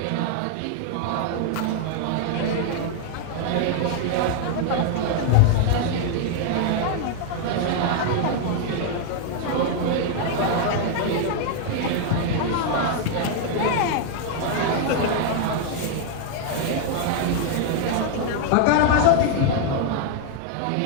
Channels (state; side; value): different; both; correlation 0.00